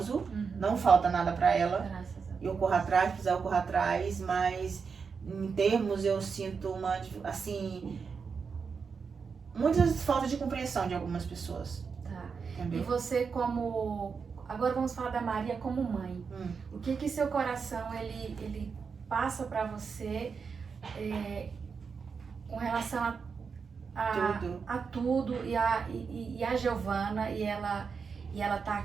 Uhum. Não falta nada pra ela. Graças a Deus. Eu corro atrás, precisar eu corro atrás, mas em termos eu sinto assim, muitas faltas de compreensão de algumas pessoas, Tá. E entendeu? você como... Agora vamos falar da Maria como mãe. O que seu coração, ele passa pra você com relação Tudo. a tudo e a Giovana e ela tá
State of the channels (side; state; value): left; quieter; 5.6 dB